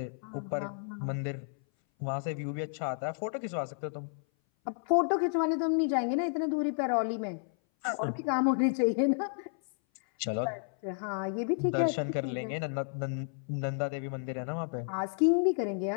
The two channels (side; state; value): right; silent; 57 dB below the other